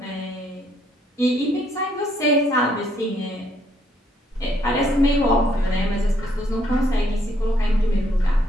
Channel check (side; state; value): both; normal; correlation 0.69